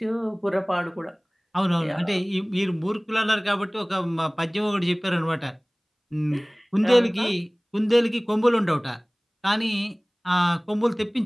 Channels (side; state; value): both; identical; correlation 1.00